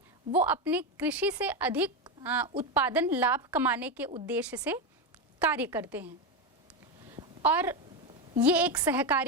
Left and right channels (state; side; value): normal; both; correlation 0.11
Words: वो अपने कृषि से अधिक उत्पादन लाभ कमाने के उद्देश्य से कार्य करते हैं और ये एक